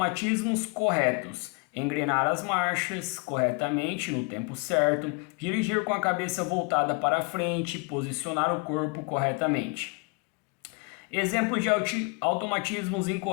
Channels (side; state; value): right; quieter; 29.8 dB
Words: corretos: engrenar as marchas corretamente no tempo certo, dirigir com a cabeça voltada para frente, posicionar o corpo corretamente. Exemplos de automatismos